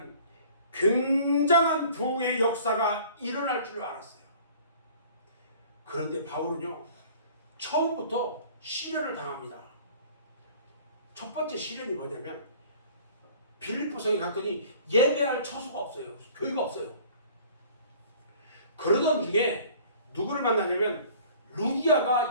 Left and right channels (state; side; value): inverted; both; correlation -0.50